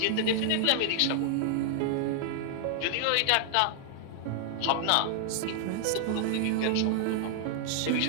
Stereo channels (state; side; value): different; both; correlation 0.00